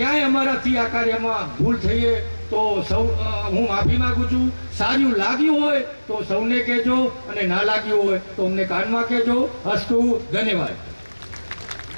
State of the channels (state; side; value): inverted; both; correlation -1.00